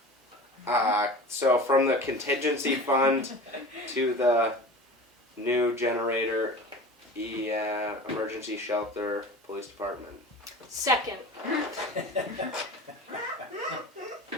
So from the contingency fund to the new generator, emergency shelter, police department. Second.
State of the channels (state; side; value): normal; both; correlation 0.36